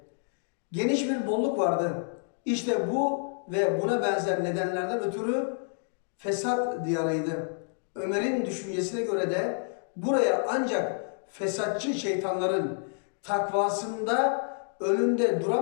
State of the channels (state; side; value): silent; right; digital silence